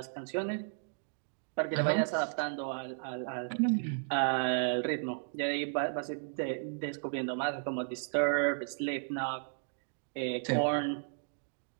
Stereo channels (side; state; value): left; silent; digital silence